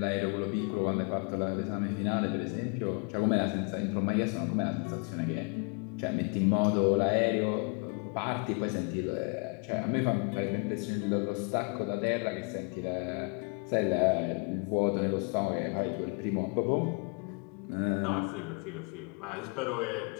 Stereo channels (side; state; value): right; quieter; 34.6 dB